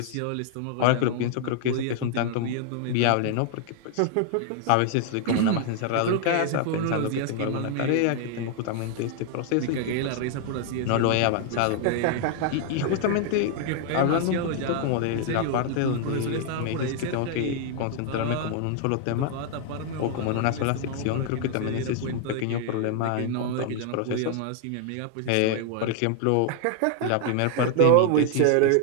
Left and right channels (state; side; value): different; both; correlation 0.00